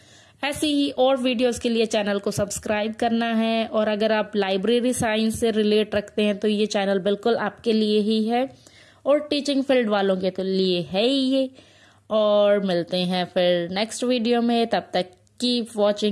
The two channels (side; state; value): both; identical; correlation 1.00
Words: ऐसी ही और वीडियोस के लिए चैनल को सब्सक्राइब करना है। और अगर आप लाइब्रेरी साइंस से रिलेट रखते हैं तो ये चैनल बिल्कुल आपके लिए ही है, और टीचिंग फील्ड वालों के तो लिए है ही ये। और मिलते हैं फिर नेक्स्ट वीडियो में, तब तक कीप